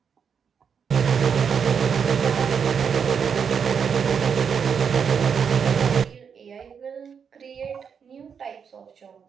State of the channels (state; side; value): quieter; left; 6.8 dB